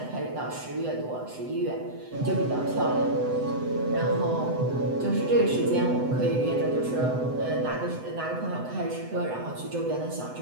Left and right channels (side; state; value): left; late; 7.9 ms